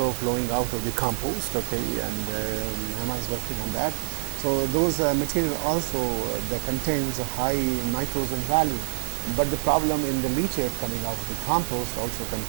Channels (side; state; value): left; silent; digital silence